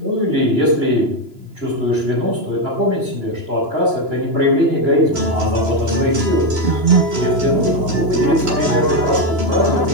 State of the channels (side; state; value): left; late; 2.9 ms